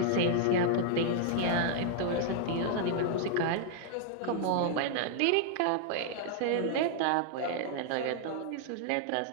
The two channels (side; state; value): both; different; correlation -0.01